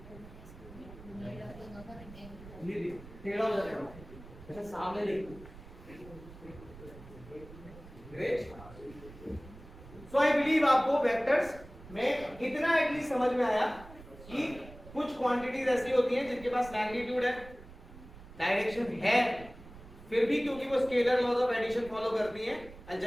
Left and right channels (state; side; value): noise; right; rumble, 18 dB below the sound